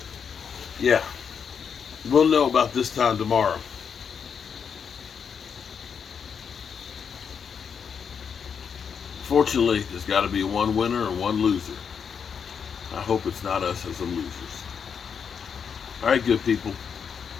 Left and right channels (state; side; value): quieter; right; 6.8 dB